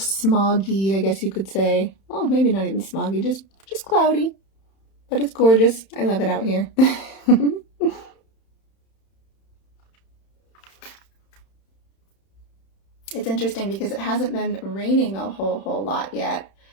I guess you could say. Oh, maybe not even smoggy, just cloudy. But it's gorgeous. I love it out here. It's interesting because it hasn't been raining a whole lot yet.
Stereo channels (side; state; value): right; late; 31 ms